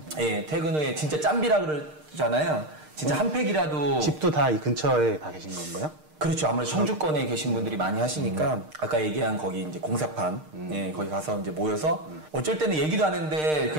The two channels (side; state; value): left; late; 6.5 ms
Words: 퇴근 후에 진짜 짬비라 그러잖아요. 진짜 한 팩이라도. 집도 다 이 근처에 다 계신 건가요? 그렇죠. 아무래도 청주권에 계신 분들이 많이 하시니까 아까 얘기한 거기 이제 공사판 거기 가서 이제 모여서 어쩔 때는 얘기도 안 했는데